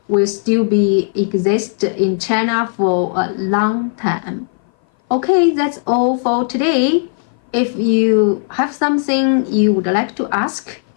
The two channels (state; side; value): silent; right; 58 dB below the other